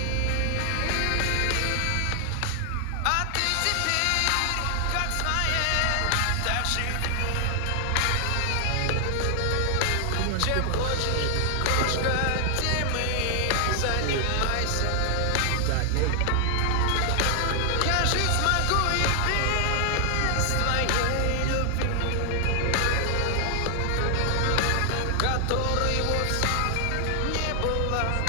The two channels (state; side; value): different; both; correlation 0.00